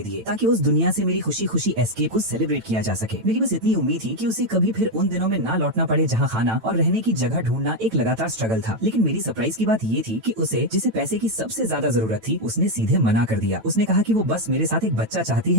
दिए ताकि उस दुनिया से मेरी खुशी खुशी एस्केप को सेलिब्रेट किया जा सके। मेरी बस इतनी उम्मीद थी कि उसे कभी फिर उन दिनों में ना लौटना पड़े जहाँ खाना और रहने की जगह ढूंढना एक लगातार स्ट्रगल था। लेकिन मेरी सरप्राइज की बात ये थी कि उसे जिसे पैसे की सबसे ज्यादा जरूरत थी उसने सीधे मना कर दिया। उसने कहा कि वो बस मेरे साथ एक बच्चा चाहती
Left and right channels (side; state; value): left; late; 9.0 ms